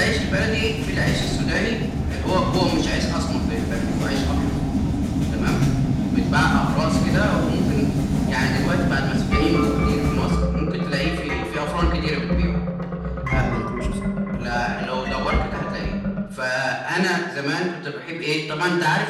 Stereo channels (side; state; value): both; identical; correlation 1.00